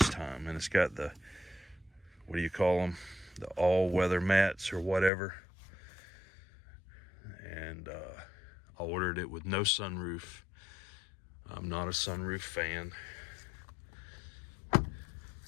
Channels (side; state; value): right; drops out; at 5.1 s